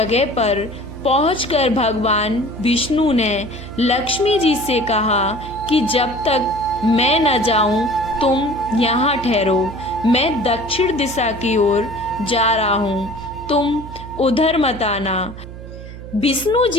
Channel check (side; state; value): right; noise; hum, 13 dB below the sound